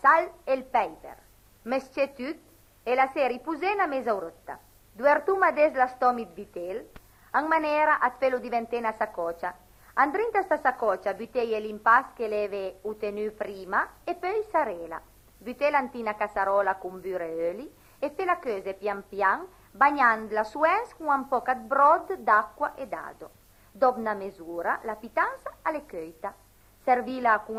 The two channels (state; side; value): identical; both; correlation 1.00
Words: sal e il peper. Mesce tutto e la sera ripusè una mezz'oretta. Duertuma des la stomi di vitello, in maniera a pelo diventare una saccoccia. Andrinta sta saccoccia buttei l'impasto che leve utenu prima e poi sarela. Buttei l'antina cassarola con burro e oli e fe la cose pian pian bagnandola su ens con un po' di brodo d'acqua e dado. Dopo una misura, la pittanza alle coita. Servila con